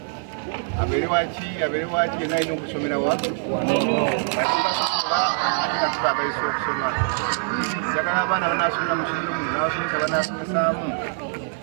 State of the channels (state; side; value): silent; left; 63 dB below the other